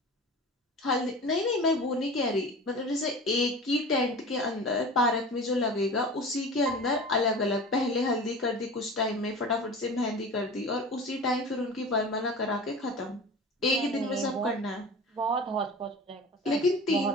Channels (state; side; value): normal; both; correlation 0.35